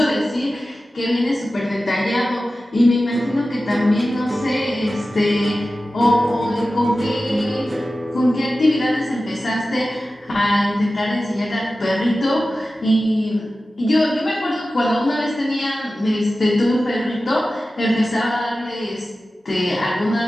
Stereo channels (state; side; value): normal; both; correlation 0.95